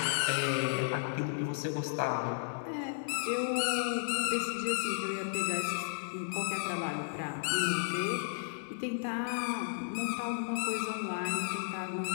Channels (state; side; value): silent; right; digital silence